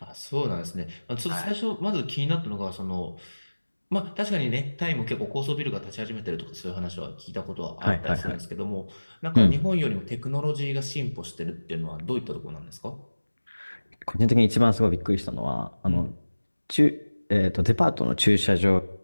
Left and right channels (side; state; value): both; inverted; correlation -1.00